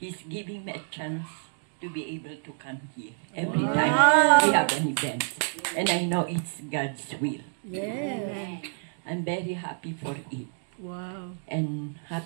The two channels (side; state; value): left; silent; 59 dB below the other